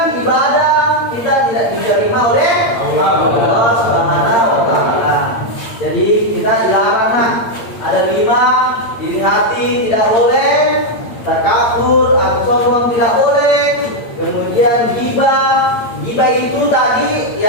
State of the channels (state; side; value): late; right; 8.7 ms